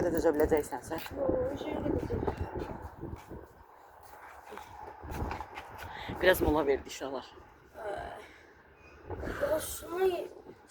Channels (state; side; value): identical; both; correlation 1.00